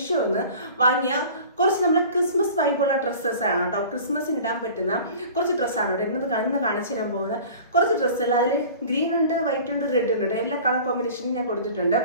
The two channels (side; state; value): both; inverted; correlation -0.42